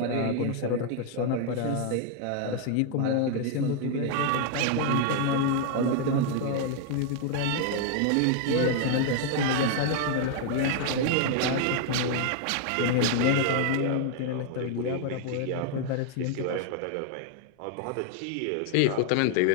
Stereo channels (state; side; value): different; both; correlation 0.00